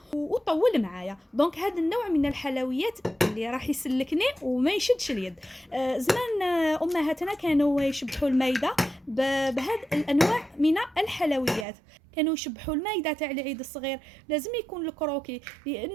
وطول معايا. دونك هذا النوع من الحلويات اللي راح يسلكني وما يشدش اليد. زمان امهاتنا كانوا يشبحوا المايده بهذه الانواع من الحلويات. كانوا يشبحوا المايده تاع العيد الصغير لازم يكون الكروكي،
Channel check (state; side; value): drops out; left; at 11.7 s